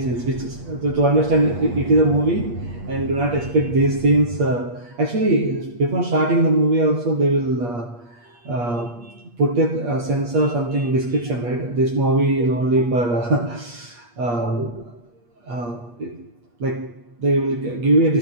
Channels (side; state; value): left; late; 8.4 ms